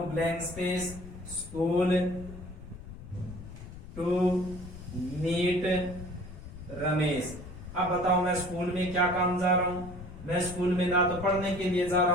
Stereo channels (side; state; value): left; noise; rumble, 14 dB below the sound